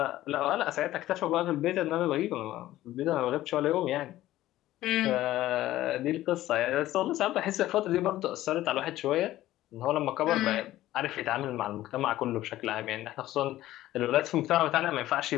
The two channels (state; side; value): quieter; right; 14.9 dB